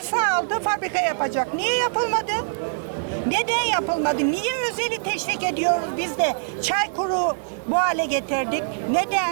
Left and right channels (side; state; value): left; silent; digital silence